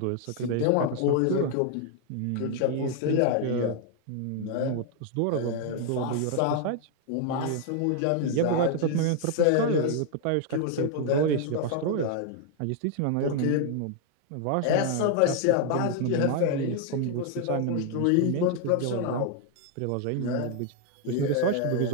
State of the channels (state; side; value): different; both; correlation 0.00